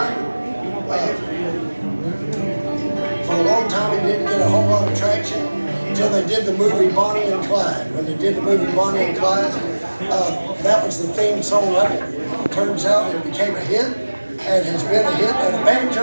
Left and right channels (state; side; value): inverted; both; correlation -1.00